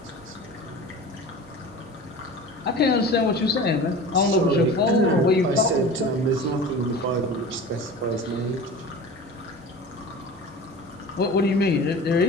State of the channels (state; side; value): normal; both; correlation 0.36